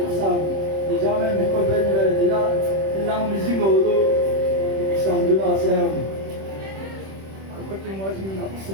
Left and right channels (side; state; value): left; late; 26 ms